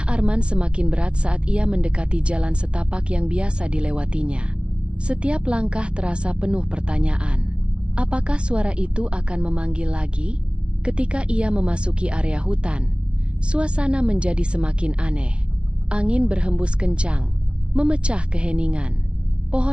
Arman semakin berat saat ia mendekati jalan setapak yang biasa dilewatinya. Setiap langkah terasa penuh pertanyaan. Apakah suara itu akan memanggil lagi? Ketika ia memasuki area hutan, suasana menjadi semakin aneh. Angin berhembus kencang, memecah keheningan.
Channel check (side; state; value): left; late; 0.059 ms